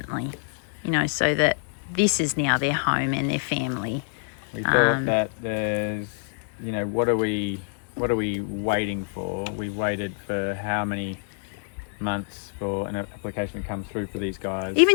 you know, so that this is now their home and their family. We thought that there's, you know, what are we waiting for? We waited for how many months for an application to come through for these guys?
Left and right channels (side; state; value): right; silent; 61 dB below the other